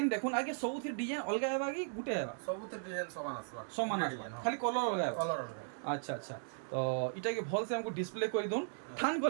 দেখুন আগে সবুথে ডিজাইন অলগা হেবা কি গুটে হেবা ସବୁতে ডিজাইন সমান আসবা সমান আসবা খালি কলর অলগা হেবা কলর অলগা আচ্ছা আচ্ছা তো এটাকে ভালসে আমাকে ডিসপ্লে করে দিন থান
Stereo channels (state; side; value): silent; left; digital silence